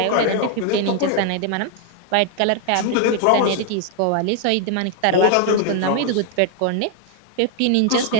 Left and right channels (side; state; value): both; different; correlation 0.00